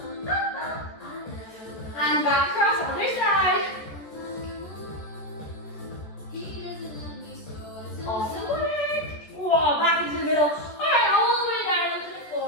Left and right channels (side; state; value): right; late; 14 ms